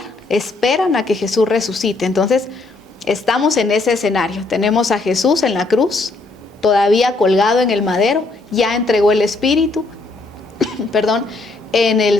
esperan a que Jesús resucite. Entonces, estamos en ese escenario. Tenemos a Jesús en la cruz, todavía colgado en el madero, ya entregó el Espíritu, perdón, en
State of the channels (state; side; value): quieter; right; 3.2 dB